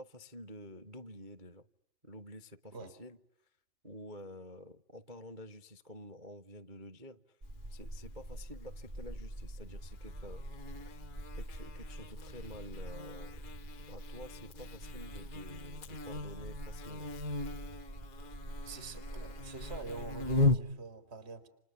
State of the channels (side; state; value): left; late; 2.4 ms